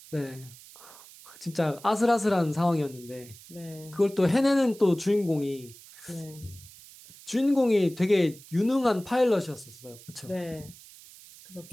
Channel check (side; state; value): right; noise; hiss, 20 dB below the sound